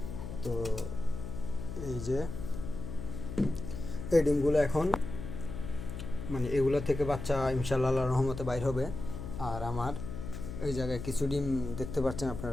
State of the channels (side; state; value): left; noise; hum, 7 dB below the sound